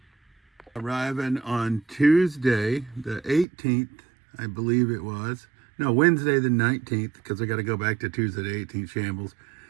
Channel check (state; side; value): drops out; left; at 3.5 s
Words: Arriving on Tuesday, the 18th, I believe it was. No, Wednesday the 19th, because I got to go back to Tuesday the 18th shambles.